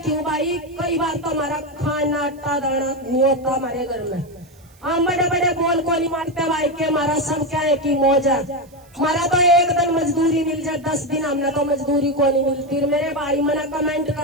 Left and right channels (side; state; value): right; noise; hiss, 29 dB below the sound